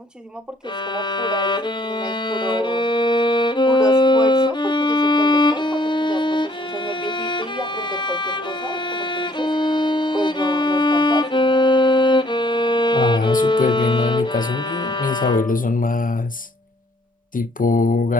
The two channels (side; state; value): both; normal; correlation 0.62